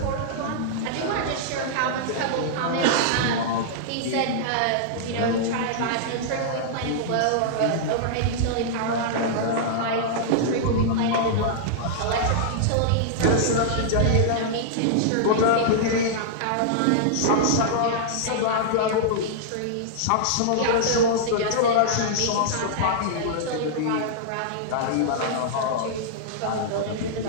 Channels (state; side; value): different; both; correlation -0.02